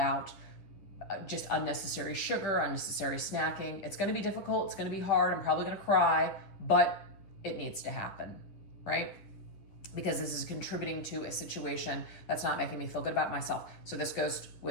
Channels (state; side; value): late; right; 10 ms